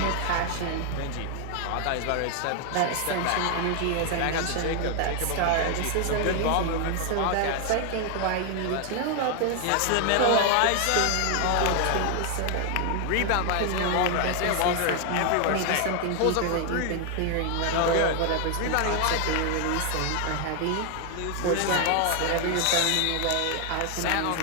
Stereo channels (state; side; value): different; both; correlation 0.00